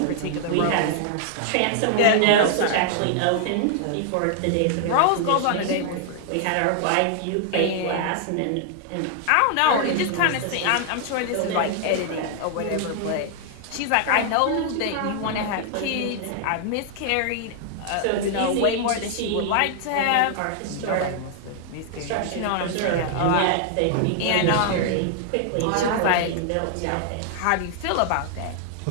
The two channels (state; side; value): different; both; correlation -0.01